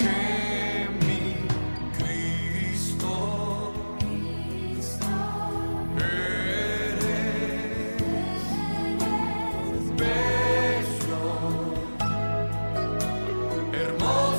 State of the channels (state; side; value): inverted; both; correlation -1.00